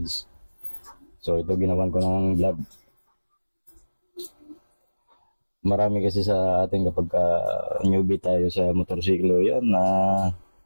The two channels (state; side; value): inverted; both; correlation -1.00